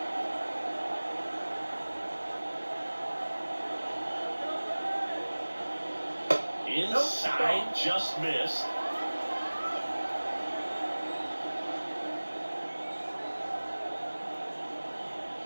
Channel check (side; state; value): both; inverted; correlation -1.00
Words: Inside, just missed.